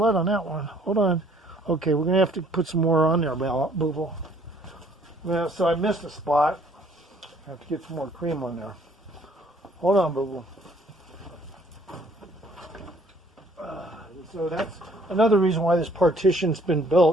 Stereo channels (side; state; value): both; normal; correlation 0.61